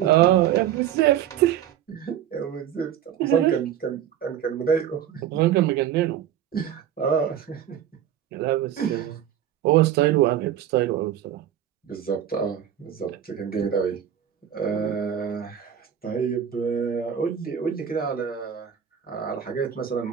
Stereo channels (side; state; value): left; quieter; 10.1 dB